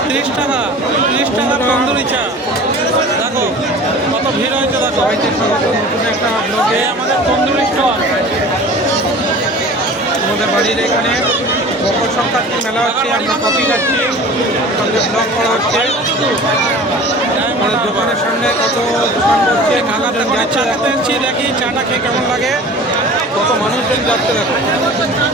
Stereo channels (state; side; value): normal; both; correlation 0.41